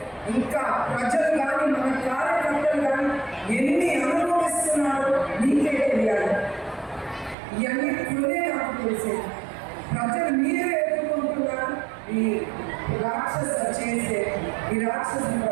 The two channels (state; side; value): drops out; left; at 7.4 s